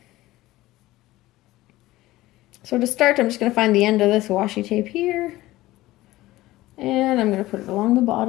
So to start, I'm just going to find the end of this washi tape here. And I'm going to put it along the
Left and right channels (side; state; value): right; quieter; 17.3 dB